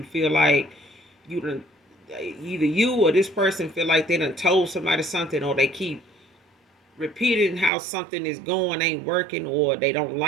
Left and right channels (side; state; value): left; drops out; at 7.7 s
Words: feel like you done, either you or this person feel like they done told somebody something, or they keep repeating how something is going, ain't working, or they don't